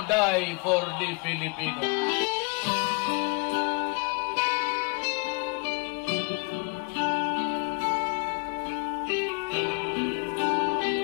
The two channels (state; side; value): quieter; right; 32.4 dB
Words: die for the Filipino.